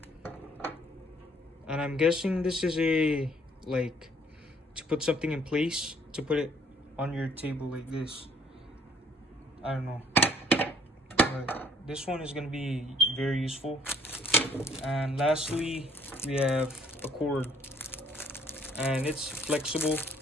And I'm guessing this is a like to put something in place, to put it on your table like this. I don't know, but this one is gonna be very useful. And lastly, we have a cord, and it's flexible,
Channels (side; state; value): both; normal; correlation 0.61